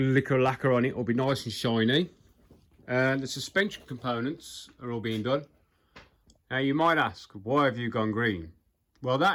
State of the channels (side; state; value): both; identical; correlation 1.00